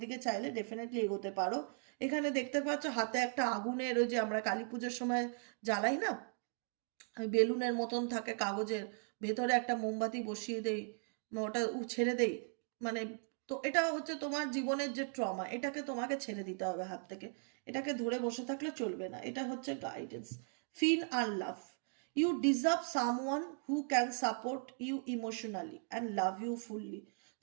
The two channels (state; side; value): silent; left; 52 dB below the other